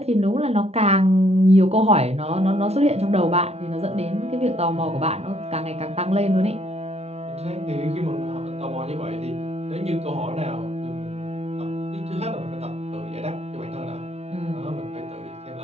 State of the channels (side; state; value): left; late; 0.31 ms